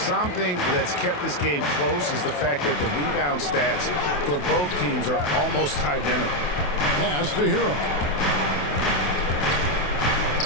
that's kept this game close is the fact that the rebound stats for both teams are almost identical. Pass to Hero.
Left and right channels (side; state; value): right; late; 28 ms